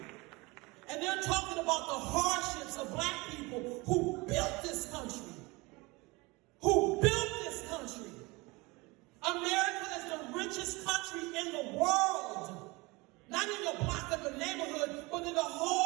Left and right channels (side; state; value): left; quieter; 24.3 dB